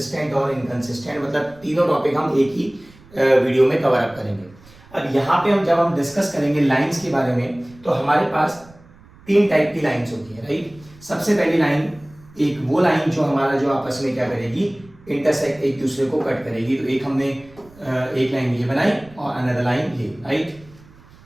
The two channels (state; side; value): noise; right; rumble, 25 dB below the sound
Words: और इनकंसिस्टेंट, मतलब तीनों टॉपिक हम एक ही वीडियो में कवर अप करेंगे। अब यहाँ पे जब हम डिस्कस करेंगे लाइंस के बारे में, तो हमारे पास तीन टाइप की लाइंस होती है, राइट। सबसे पहली लाइन, एक वो लाइन जो आपस में क्या करेगी, इंटरसेक्ट, एक दूसरे को कट करेगी। तो एक हमने एक लाइन ये बनाई और अनदर लाइन ये, राइट।